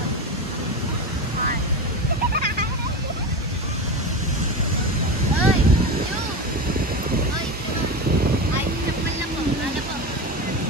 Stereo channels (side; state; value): both; normal; correlation 0.22